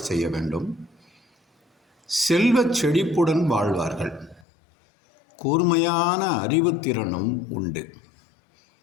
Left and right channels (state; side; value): drops out; right; at 4.5 s